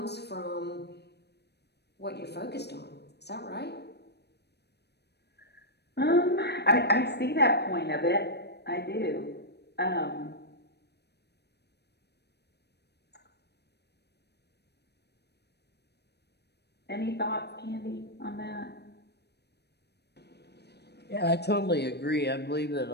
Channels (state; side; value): late; right; 0.48 ms